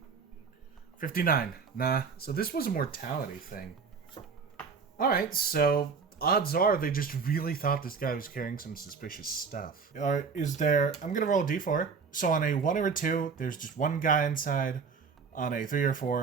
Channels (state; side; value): quieter; left; 5.5 dB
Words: 59. Nah, so this was a mortality thing. Alright, so odds are they just really thought this guy was carrying some suspicious stuff. Is there... I'm gonna roll a d4. So on a 1 or a 2, there's just 1 guy inside. On a 3 or